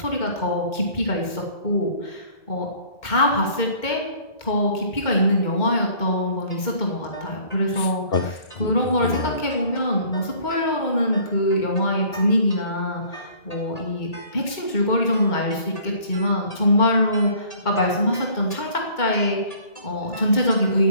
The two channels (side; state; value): right; late; 2.1 ms